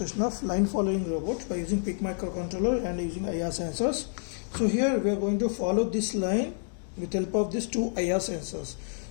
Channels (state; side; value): silent; right; 59 dB below the other